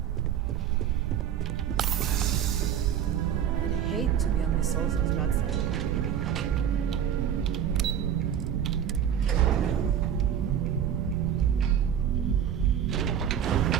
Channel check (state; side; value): quieter; left; 9.3 dB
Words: I'd hate to be on Miss Olzo's bad side.